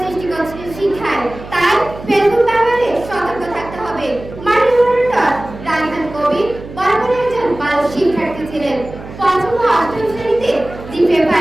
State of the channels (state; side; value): noise; right; hum, 14 dB below the sound